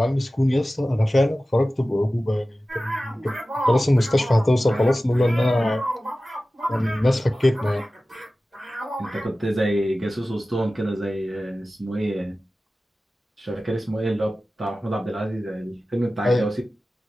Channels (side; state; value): both; normal; correlation 0.96